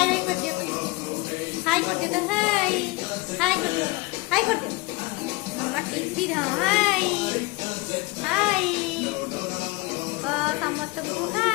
बाय कर दियो, हाय कर दियो, हाय हाय कर दियो, हाय कर दियो मामा। टीवी रो हाय हाय समस्त को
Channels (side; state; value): right; quieter; 23.5 dB